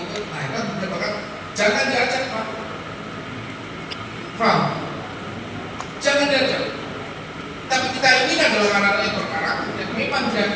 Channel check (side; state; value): both; identical; correlation 1.00